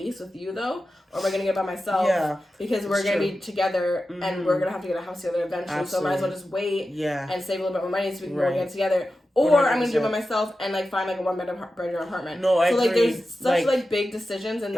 with you though, or am I gonna get by myself? Yeah. Because we're gonna be together, and we're gonna have to get a house together eventually. Absolutely. So I might as well just wait. Yeah. And save a little bit more money so we can go get together. Or 100%. I'm gonna do it by myself and like find like a one-bedroom apartment. No, I agree. So like there's such like big decisions in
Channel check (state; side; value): normal; both; correlation 0.92